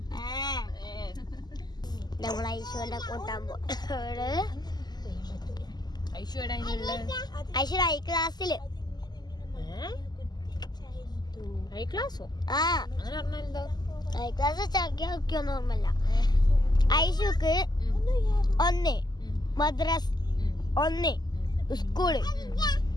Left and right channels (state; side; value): late; right; 0.20 ms